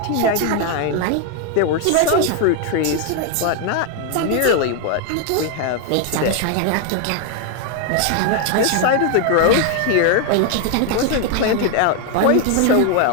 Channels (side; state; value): both; different; correlation 0.01